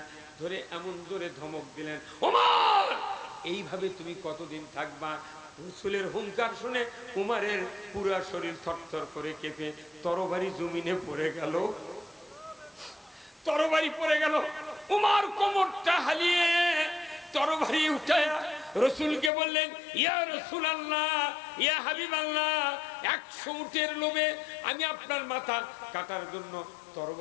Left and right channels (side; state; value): right; drops out; at 19.3 s